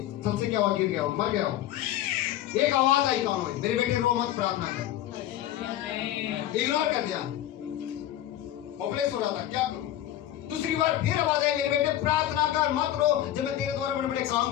से क्या हुआ? गिर गया, मर गया। एक आवाज आई कान में, मेरे बेटे रो मत, प्रार्थना कर। इग्नोर कर दिया, होपलेस हो रहा था, क्या करूं? दूसरी बार फिर आवाज आई, मेरे बेटे प्रार्थना कर, मत रो। जब मैं तेरे द्वारा बड़े बड़े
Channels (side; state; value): right; quieter; 12.6 dB